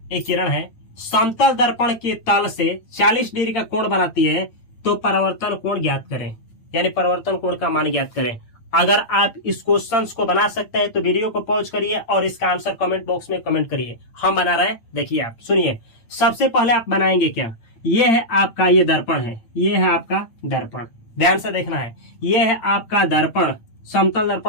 है, समतल दर्पण के तल से 40 डिग्री का कोण बनाती है, तो परावर्तन कोण ज्ञात करें, यानी परावर्तन कोण का मान ज्ञात करें। अगर आप इस क्वेश्चंस को बना सकते हैं तो वीडियो को पॉज करिए और इसका आंसर कमेंट बॉक्स में कमेंट करिए। हम बना रहे हैं, देखिए आप सुनिए। सबसे पहले आप बनाएंगे क्या, ये है आपका, ये दर्पण है, ये है आपका दर्पण, ध्यान से देखना है। ये है आपका दर्पण, समतल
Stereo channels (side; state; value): right; late; 8.9 ms